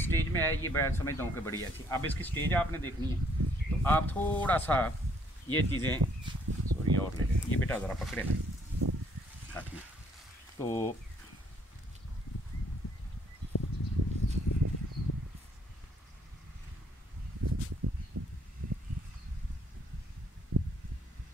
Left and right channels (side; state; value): both; normal; correlation 0.66